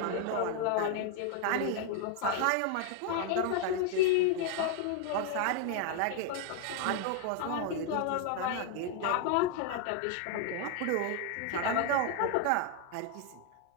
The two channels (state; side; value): different; both; correlation 0.00